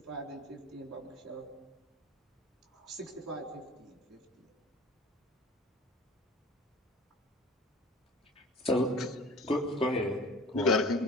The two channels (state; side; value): normal; both; correlation 0.42